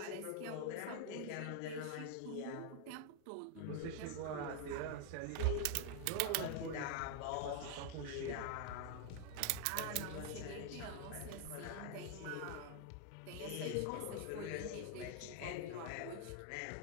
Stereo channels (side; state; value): both; different; correlation 0.00